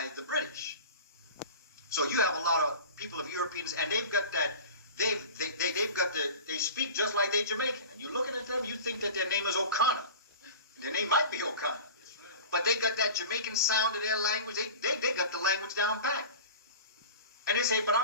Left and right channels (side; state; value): both; inverted; correlation -0.36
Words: the British. So you have a lot of people of Europeans, and they've got that, they speak just like they're Jamaican. And you're looking at them, you think that their name is O'Connor. Their name might be O'Connor. But they got that Jamaican sound to their language. They got the language down pat. And they say, but